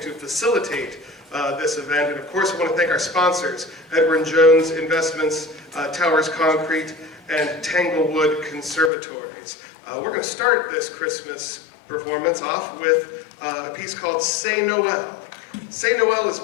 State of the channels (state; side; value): drops out; right; at 8.9 s